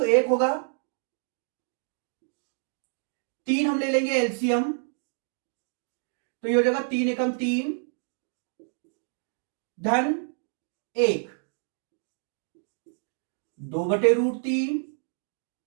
1 होगा। 3 हम ले लेंगे एलसीएम, तो ये हो जाएगा 3 एकम 3 धन 1 2/√3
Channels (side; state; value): left; silent; 59 dB below the other